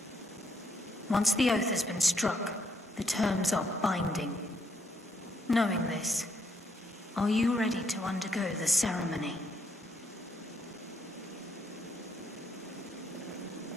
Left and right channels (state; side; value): normal; both; correlation 0.73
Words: Once the oath has been struck, the terms are binding. Knowing this, are you ready to undergo the ceremony?